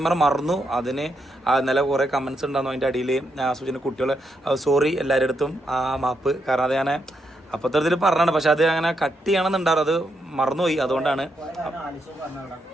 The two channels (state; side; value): normal; both; correlation 0.81